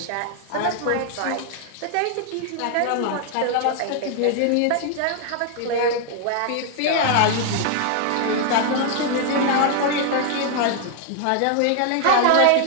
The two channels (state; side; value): different; both; correlation 0.00